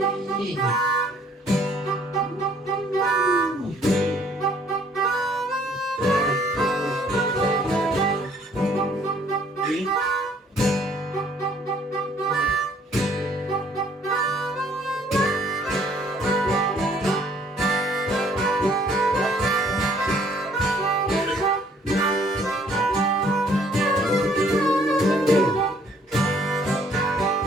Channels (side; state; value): both; normal; correlation 0.61